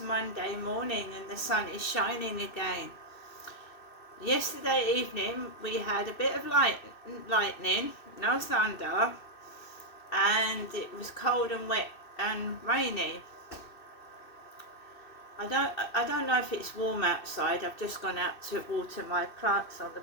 morning and the sun is shining again. Yesterday evening we had a bit of lightning, no thunder, and it was cold and wet and rainy. I don't know if it's warm outside. I've just gone out to water my plants on the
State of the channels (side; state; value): right; late; 2.6 ms